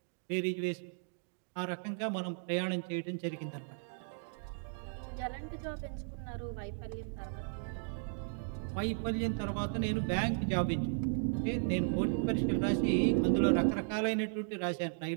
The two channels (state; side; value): silent; left; digital silence